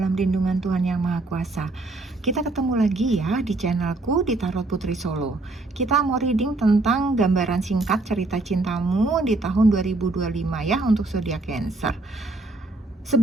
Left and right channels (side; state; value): left; quieter; 3.1 dB